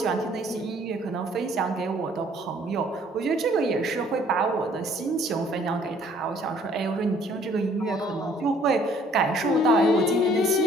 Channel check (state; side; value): normal; both; correlation 0.59